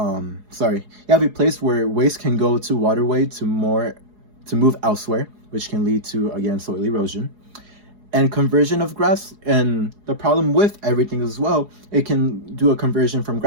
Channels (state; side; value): late; left; 4.7 ms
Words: place where waste can go to waterway to move elsewhere, which can lead to, again, soil erosion. And conversion of grass, and the problem with everything as well, it can do a conversion from